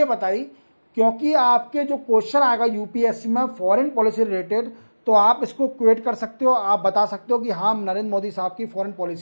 बताई क्योंकि आपके जो क्वेश्चन आएगा यूपीएससी में फॉरेन पॉलिसी रिलेटेड, तो आप इसको क्वेट कर सकते हो। आप बता सकते हो कि हाँ, नरेंद्र मोदी साहब की फॉरेन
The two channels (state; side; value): inverted; both; correlation -1.00